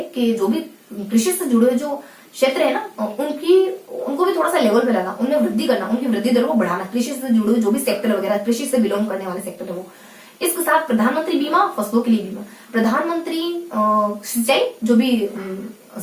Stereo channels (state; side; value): identical; both; correlation 1.00